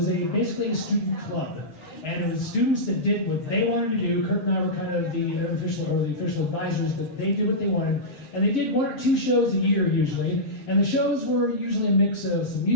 basically a student club. And it was students that did what they wanted to do. Kurt and I were kind of the official advisors, but they did what they wanted. And they did 1 or 2 shows a year usually. And the shows were usually a mix of some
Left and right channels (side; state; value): right; late; 7.2 ms